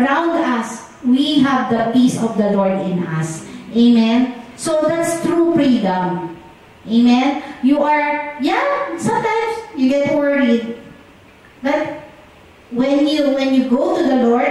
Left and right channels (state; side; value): identical; both; correlation 1.00